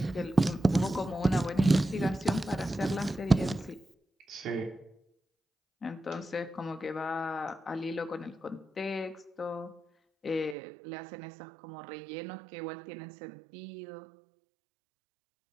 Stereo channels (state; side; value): drops out; left; at 10.6 s